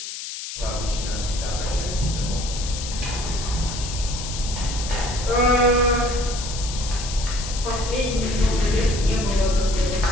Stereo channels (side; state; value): left; noise; hiss, 8 dB below the sound